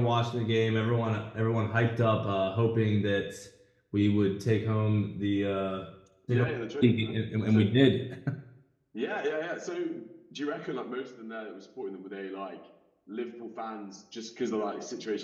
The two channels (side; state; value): both; identical; correlation 1.00